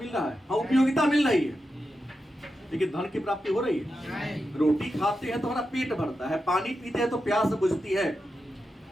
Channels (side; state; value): both; normal; correlation 0.89